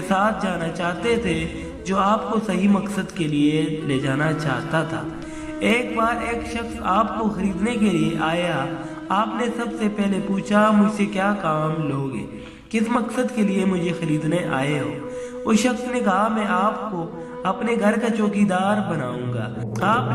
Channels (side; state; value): both; identical; correlation 1.00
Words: ساتھ جانا چاہتے تھے جو آپ کو صحیح مقصد کے لیے لے جانا چاہتا تھا۔ ایک بار ایک شخص آپ کو خریدنے کے لیے آیا۔ آپ نے سب سے پہلے پوچھا مجھ سے کیا کام لوگے، کس مقصد کے لیے مجھے خریدنے آئے ہو؟ اس شخص نے کہا میں آپ کو اپنے گھر کا چوکیدار بناؤں گا۔ آپ